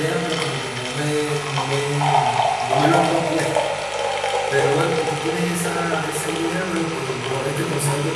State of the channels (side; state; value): both; identical; correlation 1.00